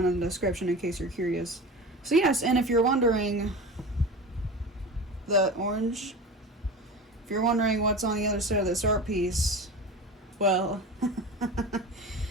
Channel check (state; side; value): normal; both; correlation 0.31